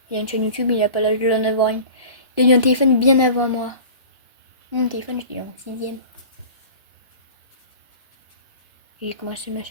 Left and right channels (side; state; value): both; inverted; correlation -0.40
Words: Il a une chaîne YouTube, il a pas l'âge de l'en avoir une. Il a eu un téléphone bien avant moi. Mon téléphone, je l'ai eu en 6ème. J'ai commencé ma